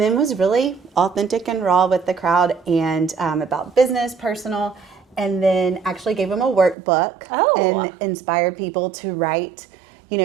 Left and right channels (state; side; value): drops out; left; at 6.8 s